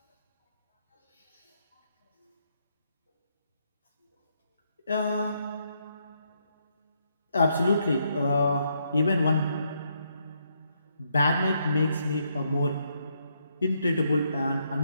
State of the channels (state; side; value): inverted; both; correlation -0.76